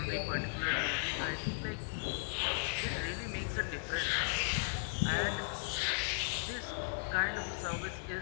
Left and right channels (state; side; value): silent; right; digital silence